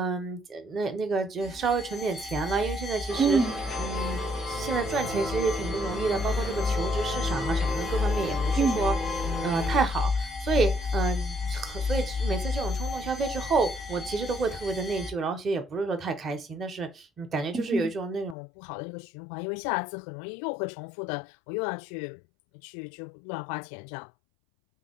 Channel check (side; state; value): right; drops out; at 18.4 s